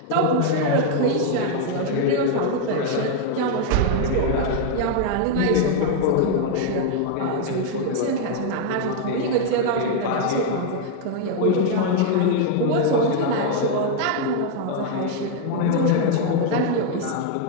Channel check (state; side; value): different; both; correlation 0.00